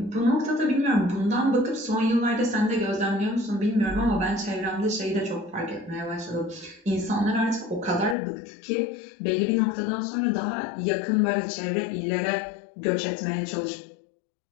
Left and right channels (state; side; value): drops out; right; at 8.2 s